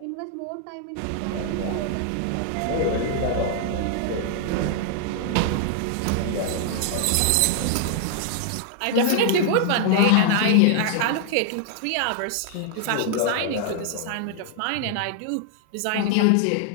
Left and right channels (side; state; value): both; different; correlation 0.00